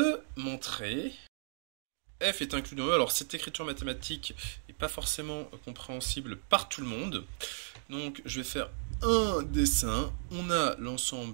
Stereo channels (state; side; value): silent; left; digital silence